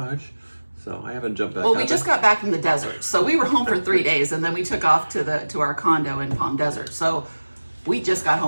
so I haven't jumped back out. Well, we just got back from the desert, so we were home for 3 days, and then we took off to our condo in Palm Desert. So we just got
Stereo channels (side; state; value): both; inverted; correlation -1.00